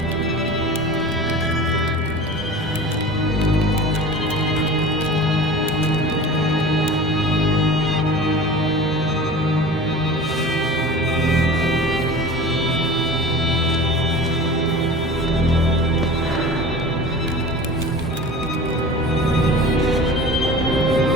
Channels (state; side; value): normal; both; correlation 0.37